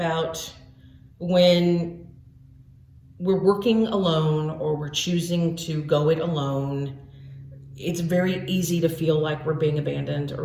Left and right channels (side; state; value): both; identical; correlation 1.00